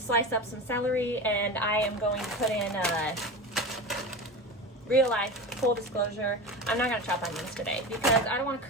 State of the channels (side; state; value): both; normal; correlation 0.27